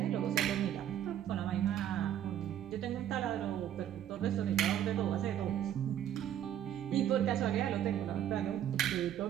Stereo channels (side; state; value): left; quieter; 10.7 dB